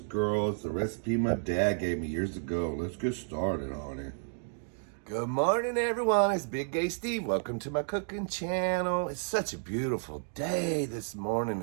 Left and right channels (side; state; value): left; silent; 55 dB below the other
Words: The recipe my dad gave me years ago. Let's get started on it. Good morning, everyone. It's Big Gay Steve. Welcome to my cooking channel. It's such a beautiful day this morning.